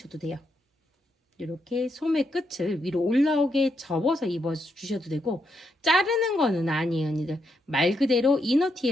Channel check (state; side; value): normal; both; correlation 0.80